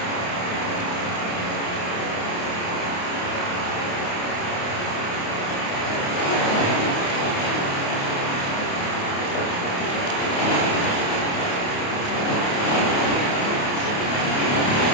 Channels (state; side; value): late; right; 28 ms